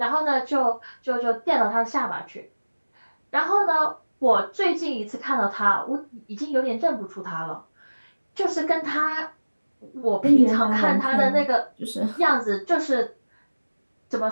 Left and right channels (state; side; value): inverted; both; correlation -1.00